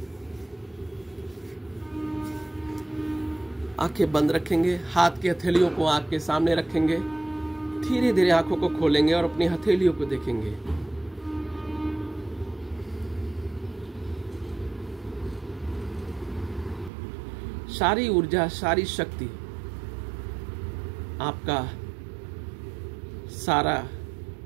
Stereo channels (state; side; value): drops out; left; at 16.9 s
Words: आंखें बंद रखेंगे, हाथ की हथेलियों को आंख के सामने रखेंगे, धीरे धीरे आंखों को खोलेंगे और अपनी हथेलियों को देखेंगे। सारी ऊर्जा, सारी शक्ति, आपका सारा